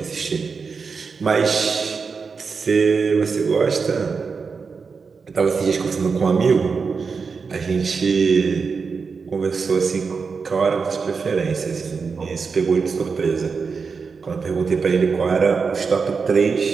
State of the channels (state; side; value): quieter; left; 5.2 dB